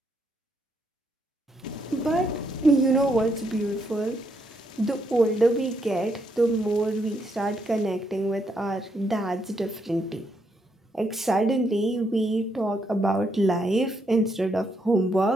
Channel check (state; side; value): normal; both; correlation 0.76